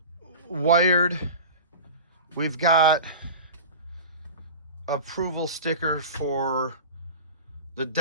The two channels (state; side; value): inverted; both; correlation -0.33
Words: wired. We've got approval sticker for the